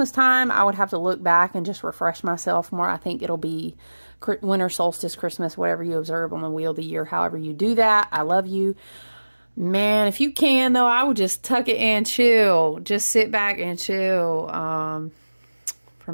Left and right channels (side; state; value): both; inverted; correlation -1.00